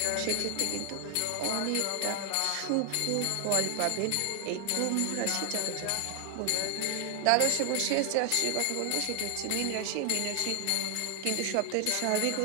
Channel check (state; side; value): different; both; correlation 0.00